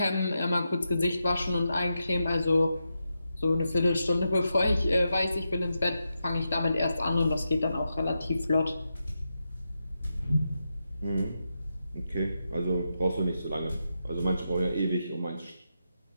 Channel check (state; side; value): inverted; both; correlation -0.87